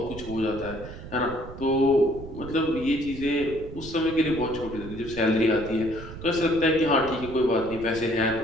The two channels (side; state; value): right; noise; rumble, 13 dB below the sound